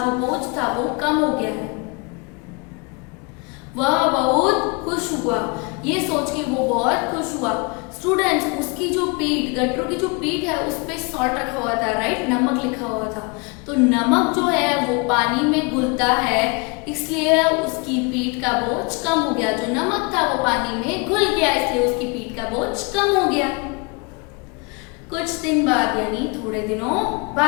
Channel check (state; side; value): quieter; right; 30.4 dB